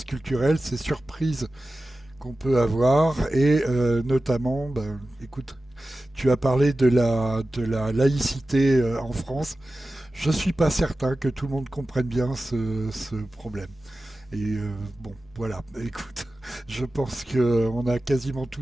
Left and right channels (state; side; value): normal; both; correlation 0.95